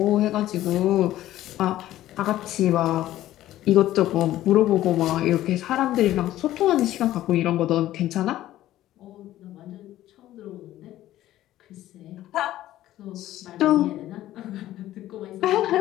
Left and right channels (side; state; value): right; quieter; 14.1 dB